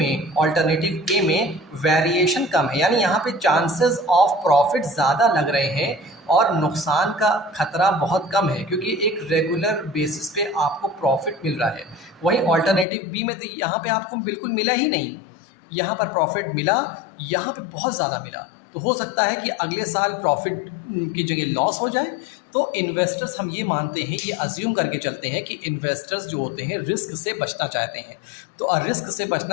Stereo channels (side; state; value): right; drops out; at 12.9 s